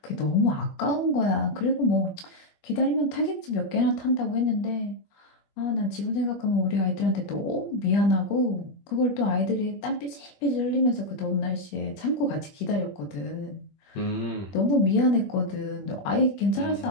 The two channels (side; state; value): right; late; 21 ms